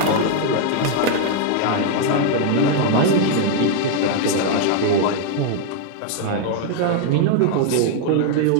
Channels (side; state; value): both; different; correlation 0.00